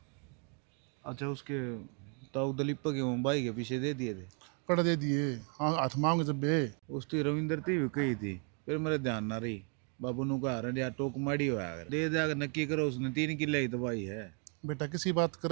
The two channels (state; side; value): quieter; left; 38.8 dB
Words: अच्छा, उसके ताऊ दलीप के भाई के पीछे दे दिए थे? कर दे दिए, हाँ हाथ मांगे जब बे। उस तो रविंदर थी भी कही थी, फिर मेरे ध्यान ना रही। बाबू नु कहा रहा यार टोक माड़ी हुआ है, दे दे नक्की करो, उसने 3 किले ही दवाई है। बेटा किसी बात